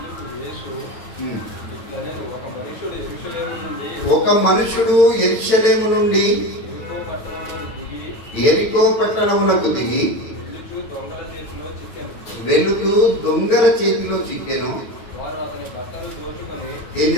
ఒక మనుషుడు యెరూషలేము నుండి యెరికో పట్టణమునకు దిగి వెళుతూ దొంగల చేతిలో చిక్కెను. ఏం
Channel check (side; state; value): right; late; 8.8 ms